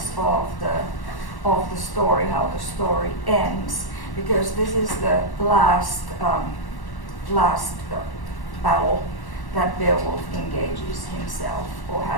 of the story, how the story ends, because this is the last battle that Beowulf engages himself, or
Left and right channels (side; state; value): right; late; 1.1 ms